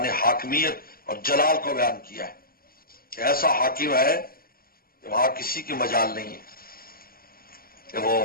حاکمیت اور جلال کو بیان کیا ہے کہ ایسا حاکم ہے کہ وہاں کسی کی مجال نہیں ہے کہ وہ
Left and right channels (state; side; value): late; right; 0.43 ms